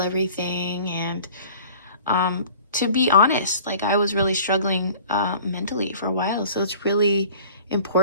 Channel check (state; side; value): inverted; both; correlation -0.47